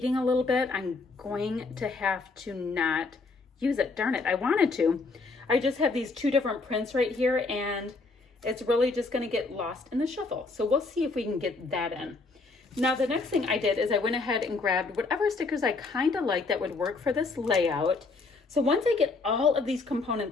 a little bit. I'm going to have to not use it. Darn it, I wanted to. I just have these two different prints right here, and it's really just going to get lost in the shuffle. So we'll see if we can get that in. Now the next thing I did is I went ahead and grabbed whatever stickers I kind of like that would work for this layout. So once I get all of these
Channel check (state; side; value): quieter; right; 3.8 dB